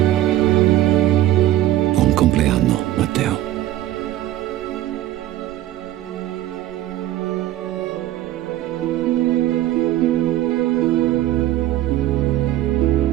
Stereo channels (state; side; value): quieter; left; 13.9 dB